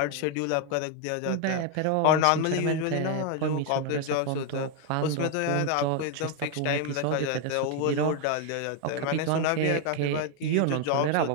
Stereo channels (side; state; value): both; different; correlation 0.01